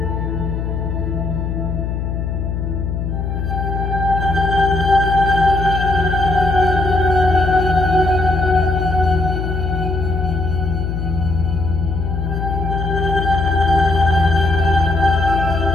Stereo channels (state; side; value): noise; left; hum, 3 dB below the sound